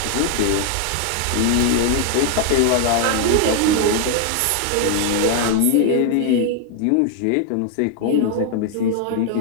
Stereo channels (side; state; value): both; different; correlation 0.00